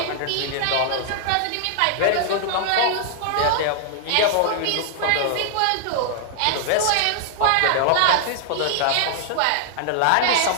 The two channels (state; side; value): different; both; correlation 0.00